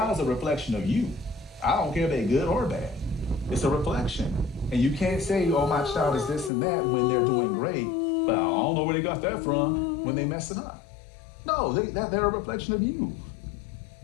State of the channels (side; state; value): right; drops out; at 6.5 s